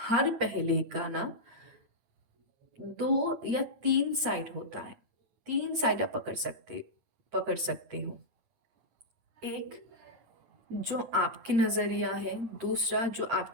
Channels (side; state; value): left; late; 8.6 ms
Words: पहले का ना दो या तीन साइड होता है। तीन साइड आप पकड़ सकते हो। एक जो आपकी नजरिया है, दूसरा जो